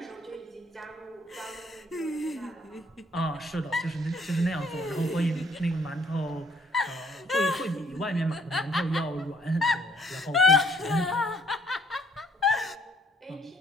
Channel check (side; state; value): both; normal; correlation 0.64